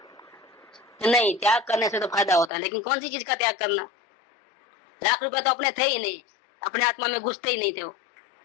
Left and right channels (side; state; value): right; drops out; at 2.5 s